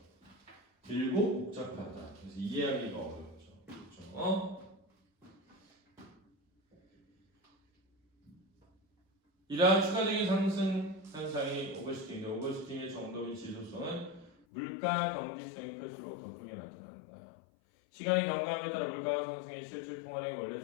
길고 복잡하다. 그래서 이해하기가 어렵죠. 그렇죠? 이러한 추가적인 상승 현상이 오버슈팅인데 오버슈팅의 정도의 지속성은 물가 경직성이 클수록 더 크게 나타난다. 시간이 경과함에 따라 물가가 상승해 실질 통화량이 원래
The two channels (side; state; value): right; drops out; at 14.3 s